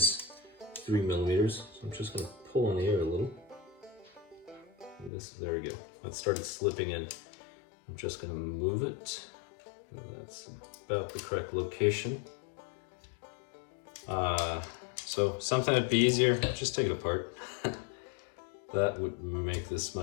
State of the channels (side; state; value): right; drops out; at 5.1 s